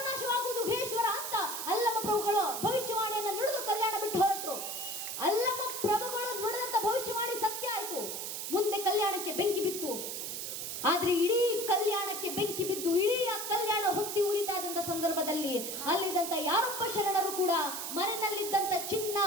ಗುಹೇಶ್ವರ ಅಂತ ಅಲ್ಲಮ ಪ್ರಭುಗಳು ಭವಿಷ್ಯವಾಣಿಯನ್ನು ನುಡಿದು ಕಲ್ಯಾಣ ಬಿಟ್ಟು ಹೊರಟರು. ಅಲ್ಲಮ ಪ್ರಭುಗಳು ನುಡಿದಂತ ಭವಿಷ್ಯವಾಣಿ ಸತ್ಯ ಆಯ್ತು. ಮುಂದೆ ಕಲ್ಯಾಣಕ್ಕೆ ಬೆಂಕಿ ಬಿತ್ತು. ಆದ್ರೆ ಇಡೀ ಕಲ್ಯಾಣಕ್ಕೆ ಬೆಂಕಿ ಬಿದ್ದು ಇಡೀ ಆ ಕಲ್ಯಾಣ ಹೊತ್ತಿ ಉರಿತಾ ಇದ್ದಂತ ಸಂದರ್ಭದಲ್ಲಿ ಅಲ್ಲಿದ್ದಂತ ಯಾರೊಬ್ಬ ಶರಣರು ಕೂಡ ಮನೆಯಲ್ಲಿದ್ದಂತ ಚಿನ್ನ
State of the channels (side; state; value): right; noise; hiss, 5 dB below the sound